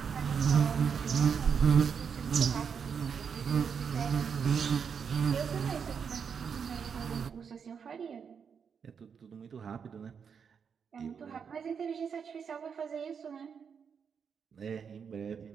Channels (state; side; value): quieter; left; 6.7 dB